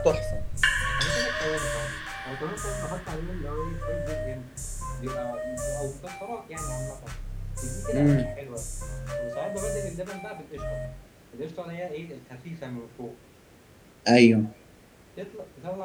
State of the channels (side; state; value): both; identical; correlation 1.00